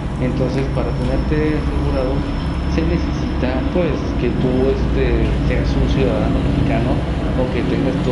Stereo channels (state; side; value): identical; both; correlation 1.00